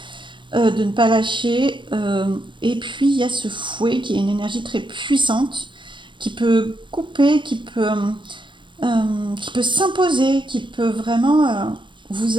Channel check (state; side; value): late; left; 0.23 ms